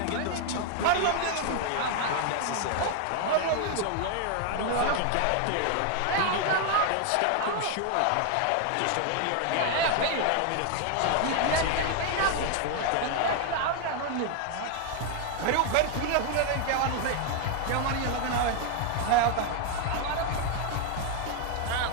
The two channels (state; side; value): different; both; correlation 0.01